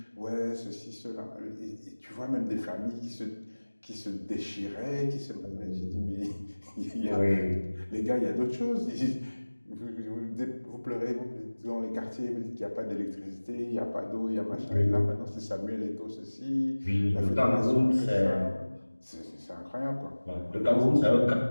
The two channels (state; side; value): inverted; both; correlation -1.00